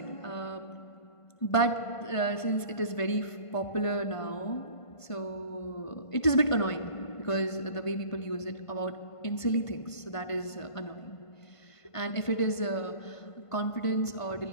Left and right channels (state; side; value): late; right; 1.5 ms